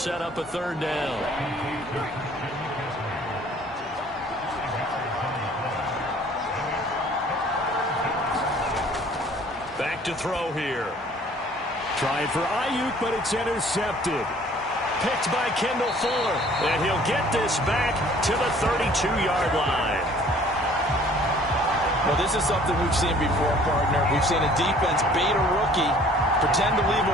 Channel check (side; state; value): both; normal; correlation 0.54